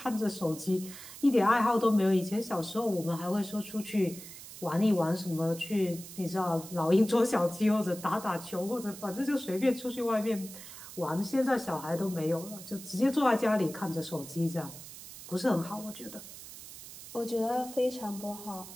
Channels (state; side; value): noise; right; hiss, 14 dB below the sound